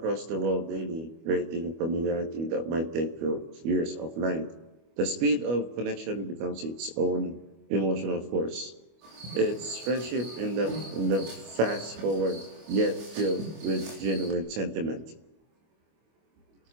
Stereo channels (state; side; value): late; left; 25 ms